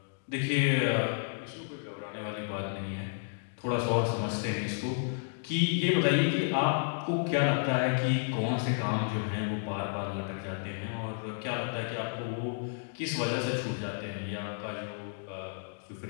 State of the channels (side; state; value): right; silent; digital silence